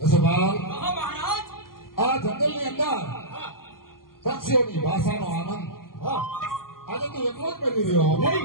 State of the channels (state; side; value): late; right; 0.91 ms